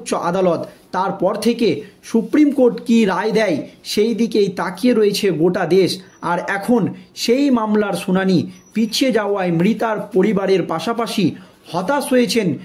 আদালত। তারপর থেকে সুপ্রিম কোর্ট কী রায় দেয় সেই দিকেই তাকিয়ে রয়েছে গোটা দেশ। আর এখন সেই মামলার শুনানি পিছিয়ে যাওয়ায় মৃতার পরিবারের পাশাপাশি হতাশ হয়েছেন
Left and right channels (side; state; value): both; identical; correlation 1.00